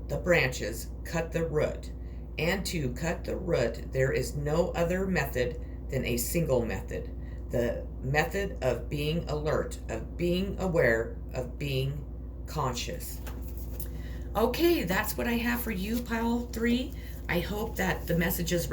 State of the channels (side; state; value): both; identical; correlation 1.00